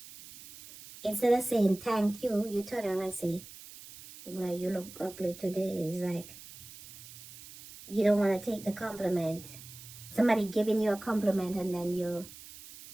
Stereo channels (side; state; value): right; noise; hiss, 17 dB below the sound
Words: Instead of saying thank you, you turn around and say, well, you look ugly today. It's like you don't want to take the compliment. Somebody giving you a compliment and then you